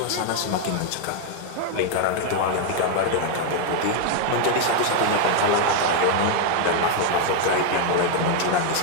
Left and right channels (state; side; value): different; both; correlation 0.00